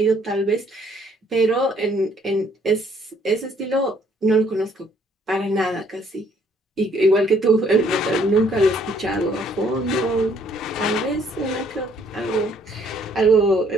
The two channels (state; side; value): normal; both; correlation 0.64